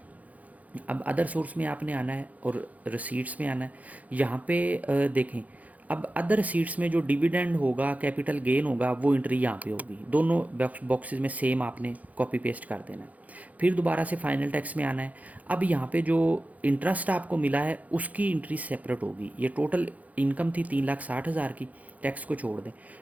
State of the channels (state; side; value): late; left; 0.075 ms